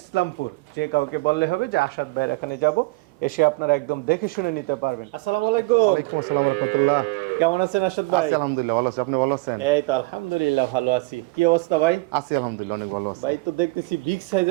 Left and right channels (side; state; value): left; quieter; 24.0 dB